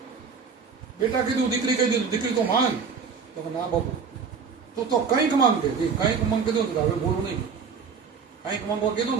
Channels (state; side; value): quieter; left; 5.8 dB